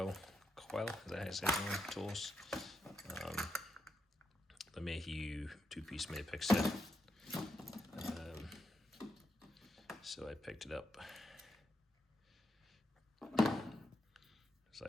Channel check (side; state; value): both; normal; correlation 0.83